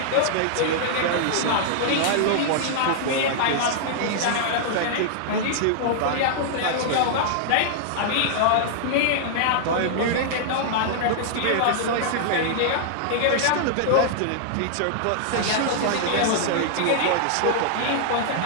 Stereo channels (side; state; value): both; different; correlation -0.01